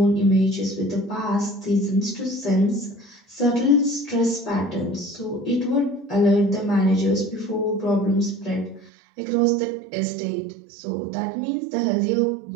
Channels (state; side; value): drops out; left; at 8.9 s